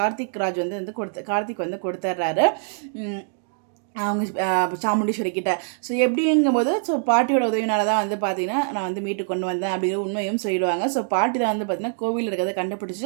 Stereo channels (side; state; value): left; silent; digital silence